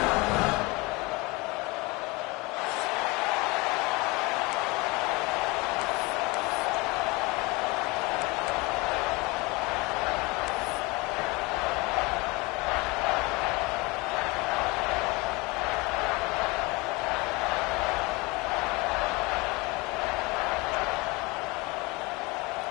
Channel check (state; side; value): quieter; right; 24.9 dB